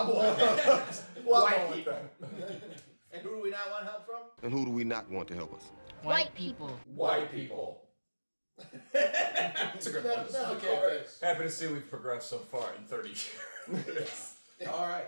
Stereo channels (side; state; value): both; inverted; correlation -1.00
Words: White people. And who do we not want help from? And who do we not want to help us? White people. White people. That's a good one. That's okay. Happy to see we've progressed so far in 30 years. All